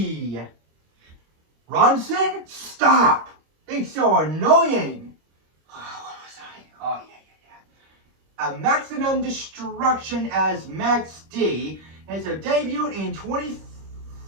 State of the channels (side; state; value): left; late; 26 ms